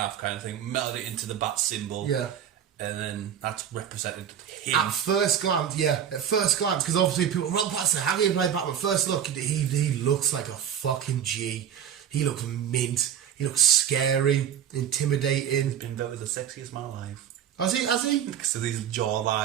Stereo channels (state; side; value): quieter; left; 9.2 dB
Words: kind of thing, melted it into the Bat symbol. Yeah. And then that's represented him. At first glance, because obviously people, Robert Pattinson, how do you play Batman? First look, he looks like a fucking G. He looks mint. He looks scary, intimidating. He's been voted the sexiest man alive. Has he? Because of his